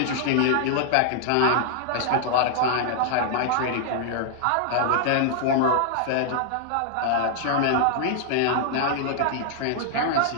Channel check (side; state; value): both; different; correlation -0.01